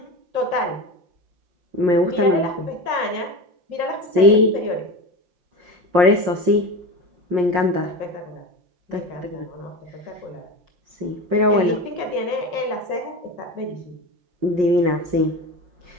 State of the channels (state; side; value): late; left; 5.6 ms